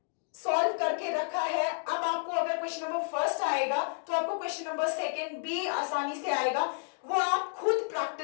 सॉल्व करके रखा है। अब आपको अगर क्वेश्चन नंबर फर्स्ट आएगा तो आपको क्वेश्चन नंबर सेकंड भी आसानी से आएगा, वो आप खुद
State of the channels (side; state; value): right; silent; digital silence